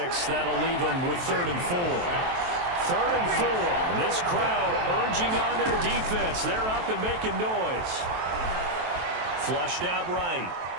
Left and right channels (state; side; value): late; left; 23 ms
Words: That'll leave them with 3rd and 4. 3rd and 4. And this crowd urging on their defense. They're up and making noise. Flushed out right.